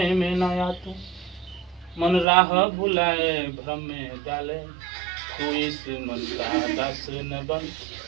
में न आ तू, मन राह भुलाए भ्रम में डाले, तू इस मन का दास न बन,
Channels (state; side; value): drops out; left; at 2.2 s